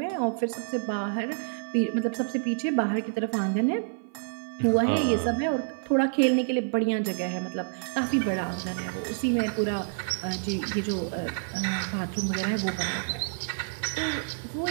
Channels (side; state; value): left; silent; 58 dB below the other